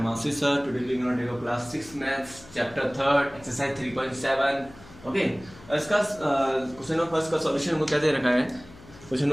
Ashish sir. Today we are going to take a class 6 maths chapter 3rd exercise 3.7. Okay, इसका question number first का solution हमको क्या दे रखा है? Question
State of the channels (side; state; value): left; noise; hum, 21 dB below the sound